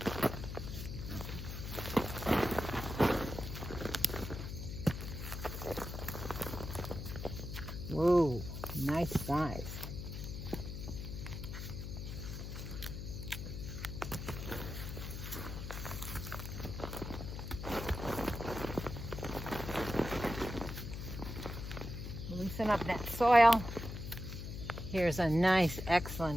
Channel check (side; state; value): left; noise; hum, 6 dB below the sound